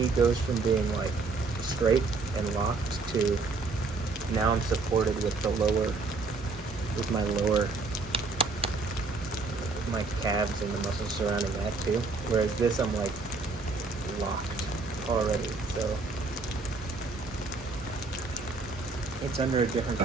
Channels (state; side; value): quieter; left; 3.9 dB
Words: goes from being like straight and locked to now I'm supported with my calves and the muscles surrounding that too. Whereas this, I'm like locked already, so it's under a different